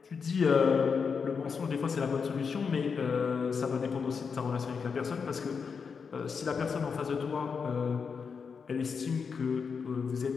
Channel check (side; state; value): right; quieter; 5.8 dB